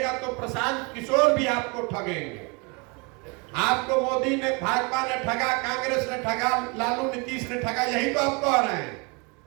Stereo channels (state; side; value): quieter; left; 30.4 dB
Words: तो प्रशांत किशोर भी आपको ठगेंगे। आपको मोदी ने, भाजपा ने ठगा, कांग्रेस ने ठगा, लालू नीतीश ने ठगा, यही तो आप कह रहे हैं।